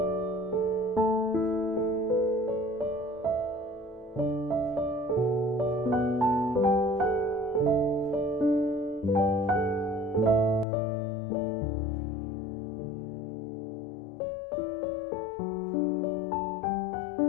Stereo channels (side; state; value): right; drops out; at 10.7 s